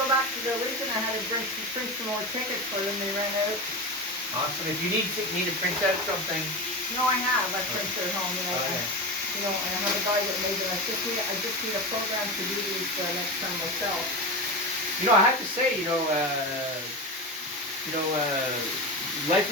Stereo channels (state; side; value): normal; both; correlation 0.22